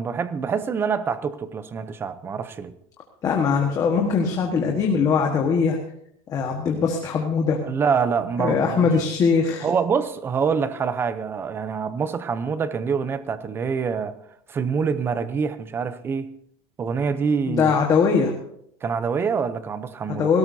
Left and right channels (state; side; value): normal; both; correlation 0.57